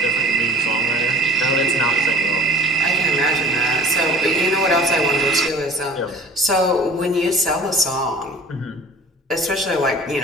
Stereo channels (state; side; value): normal; both; correlation 0.46